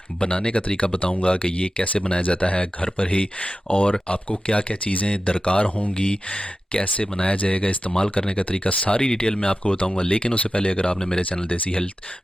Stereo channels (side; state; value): both; normal; correlation 0.93